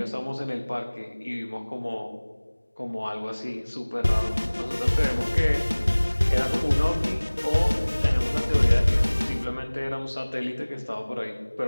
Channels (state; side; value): inverted; both; correlation -1.00